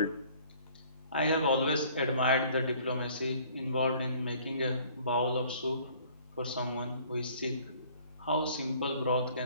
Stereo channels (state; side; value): inverted; both; correlation -0.54